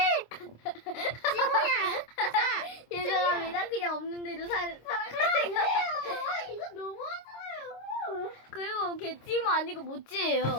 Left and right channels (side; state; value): right; late; 26 ms